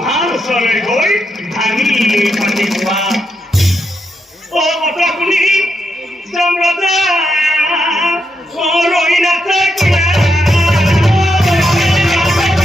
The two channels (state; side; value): normal; both; correlation 0.82